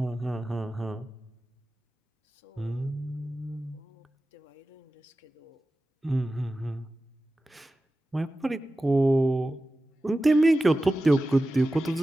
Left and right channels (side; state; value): both; normal; correlation 0.95